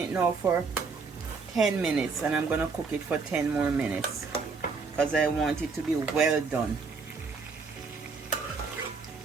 now for 10 minutes and I'm gonna cook it for 10 more minutes because I want it to be well done.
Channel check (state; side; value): quieter; left; 4.7 dB